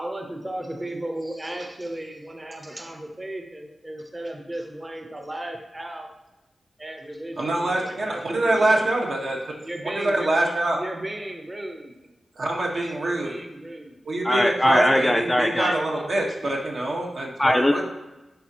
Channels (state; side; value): normal; both; correlation 0.94